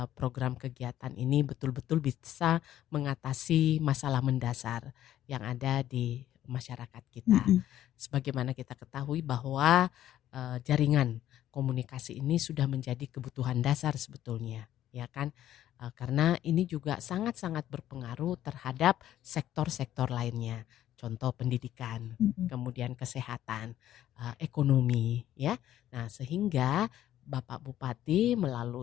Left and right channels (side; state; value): right; quieter; 12.3 dB